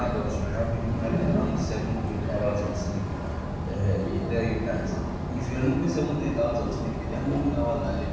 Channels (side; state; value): both; identical; correlation 1.00